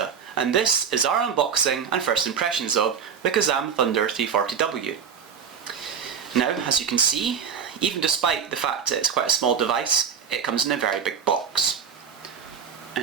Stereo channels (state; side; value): quieter; left; 7.1 dB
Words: and this is our unboxing and first impressions of the KAZAM Thunder 340W. Now, as you can see, even despite the fact that it's quite a small device, it comes in a very big box.